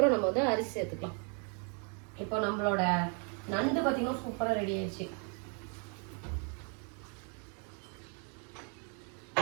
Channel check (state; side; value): quieter; left; 38.6 dB